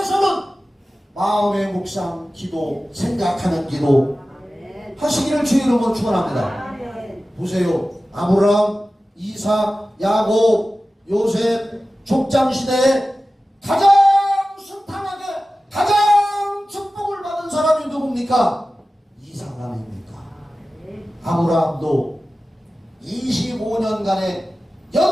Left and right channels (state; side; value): normal; both; correlation 0.95